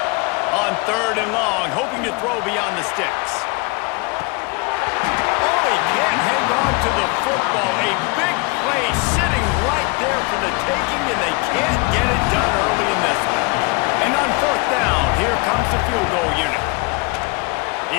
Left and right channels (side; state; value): right; quieter; 28.5 dB